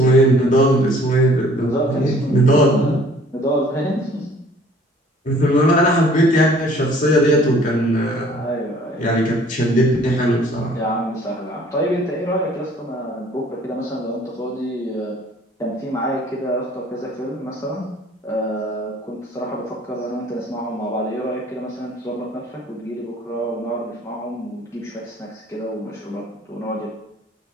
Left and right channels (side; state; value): both; normal; correlation 0.54